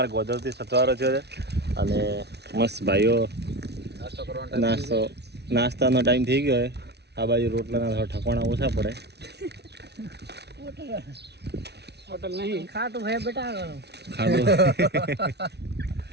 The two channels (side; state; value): left; late; 0.49 ms